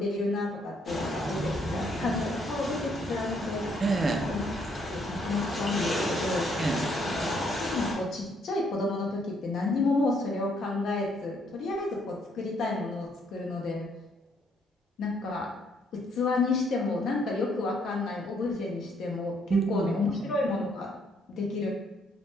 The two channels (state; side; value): normal; both; correlation 0.69